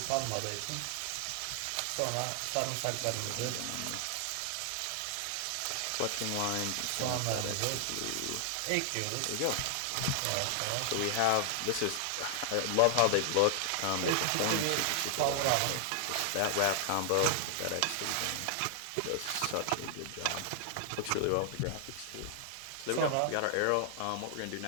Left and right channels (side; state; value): both; different; correlation 0.00